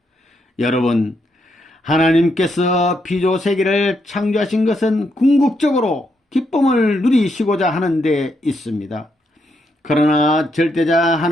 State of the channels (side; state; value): both; normal; correlation 0.78